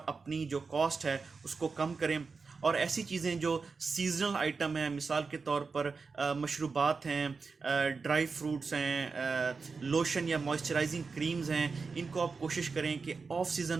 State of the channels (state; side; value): quieter; left; 4.7 dB